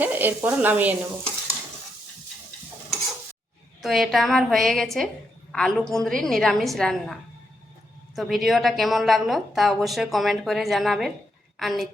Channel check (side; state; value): both; normal; correlation 0.80